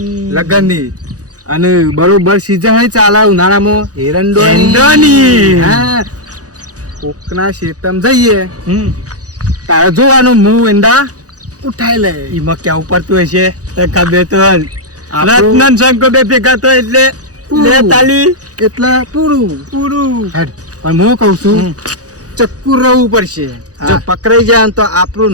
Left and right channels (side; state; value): left; late; 0.67 ms